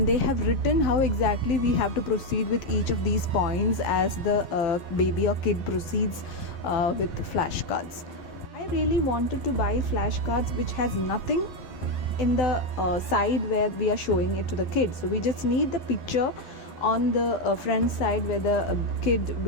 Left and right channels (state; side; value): late; right; 11 ms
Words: they have written how exactly we have to proceed with each of these points as the baby or kid proceeds with flashcards. I really wanted to buy flashcards which has nothing in the side where we are showing it to the kid. So we just need the picture on the front side where the kid